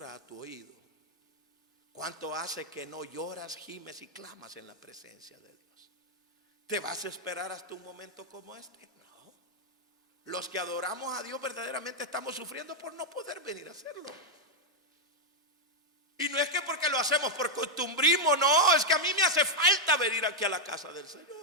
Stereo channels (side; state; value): both; normal; correlation 0.00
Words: a tu oído? ¿Cuánto hace que no lloras, gimes y clamas en la presencia de Dios? ¿Te vas a esperar hasta un momento como este? No. Los que adoramos a Dios verdaderamente estamos sufriendo por no poder venir a hacerlo. Y no es que porque lo hacemos por costumbrismo, no, es que a mí me hace falta venir aquí a la casa del